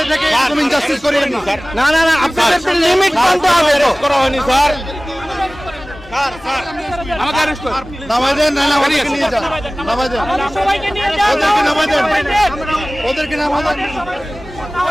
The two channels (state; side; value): normal; both; correlation 0.98